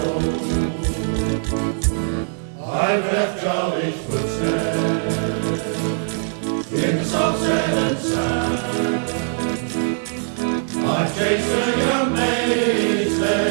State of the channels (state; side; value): silent; left; digital silence